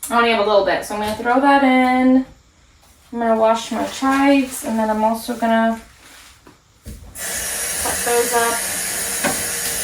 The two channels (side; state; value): both; identical; correlation 1.00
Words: I only have a little bit, so I'm gonna throw that in. I'm gonna wash my chives, and then I'm also gonna cut those up.